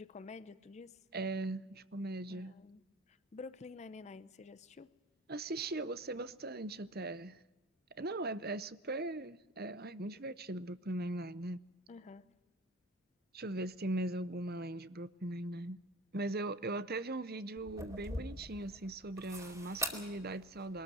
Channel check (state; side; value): normal; both; correlation 0.38